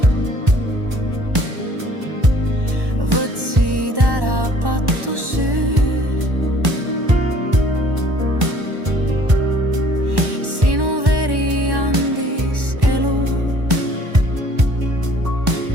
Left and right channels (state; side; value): late; left; 1.1 ms